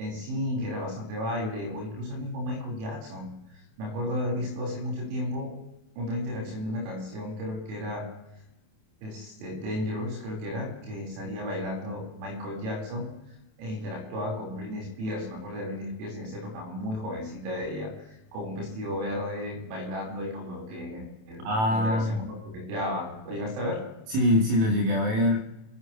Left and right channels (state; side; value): late; left; 27 ms